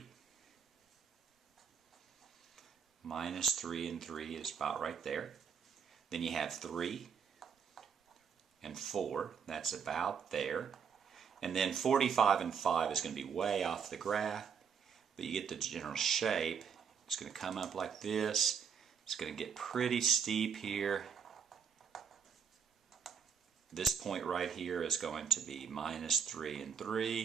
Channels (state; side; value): quieter; left; 6.9 dB